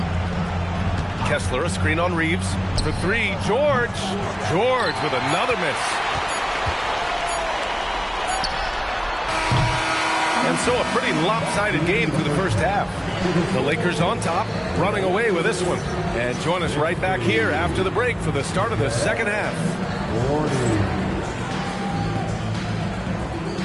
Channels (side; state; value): both; identical; correlation 1.00